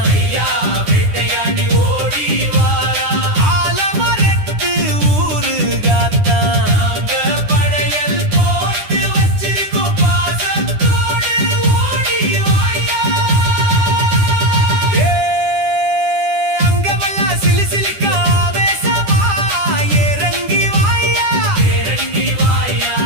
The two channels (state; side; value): late; left; 9.9 ms